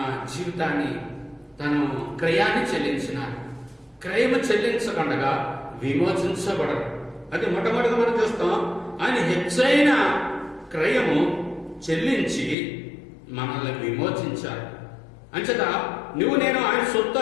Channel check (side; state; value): right; drops out; at 12.6 s